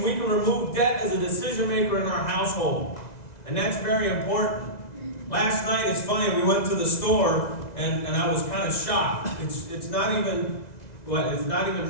we can remove debt as a decision maker in our household. And that's very important. Last night, it's funny, we went to the store and I was kind of shocked. It's not even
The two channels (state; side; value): late; right; 2.0 ms